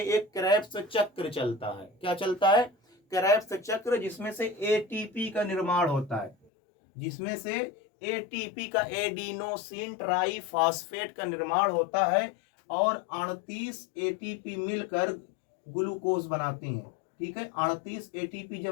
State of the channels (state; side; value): drops out; right; at 6.4 s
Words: एक क्रेब्स चक्र चलता है। क्या चलता है, क्रेब्स चक्र, जिसमें से एटीपी का निर्माण होता है, जिसमें से एटीपी का, एडिनोसिन ट्राइफॉस्फेट का निर्माण होता है, और 38 एटीपी मिलकर ग्लूकोज बनाती हैं। ठीक है, 38 एटीपी